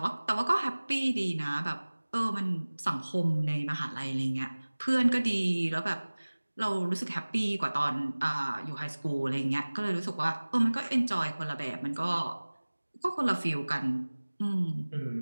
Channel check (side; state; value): both; inverted; correlation -1.00